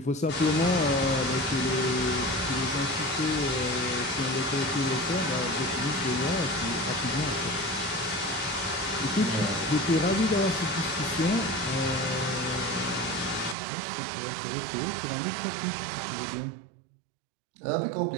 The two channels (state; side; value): drops out; left; at 13.6 s